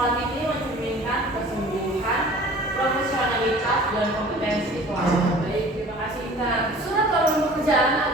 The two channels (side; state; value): both; normal; correlation 0.46